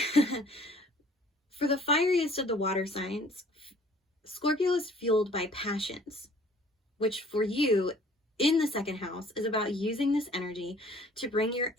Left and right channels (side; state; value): both; normal; correlation 0.55